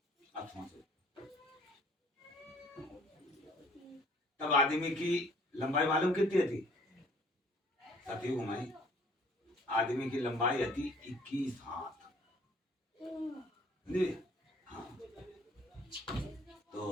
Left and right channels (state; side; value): normal; both; correlation 0.57